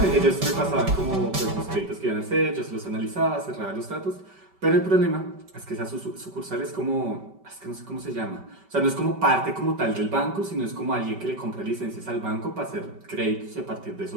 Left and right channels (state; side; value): late; left; 5.2 ms